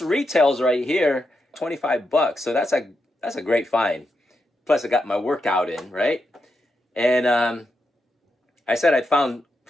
retails right here $25, so that's a great find. Plus I got my workout in, right? And I said I found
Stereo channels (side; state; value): both; normal; correlation 0.85